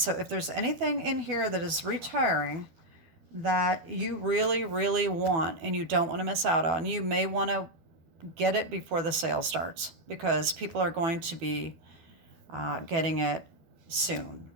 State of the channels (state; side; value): late; left; 12 ms